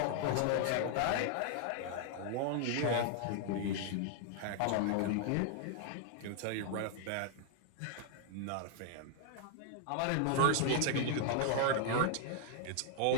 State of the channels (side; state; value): both; different; correlation 0.00